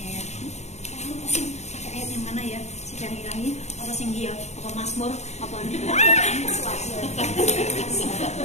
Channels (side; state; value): right; late; 0.32 ms